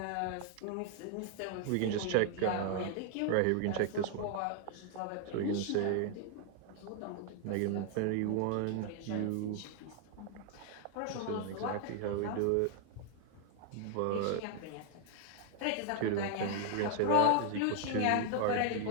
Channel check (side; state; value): both; different; correlation 0.00